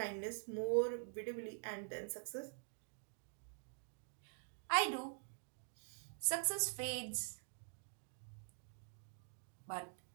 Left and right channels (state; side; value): silent; left; digital silence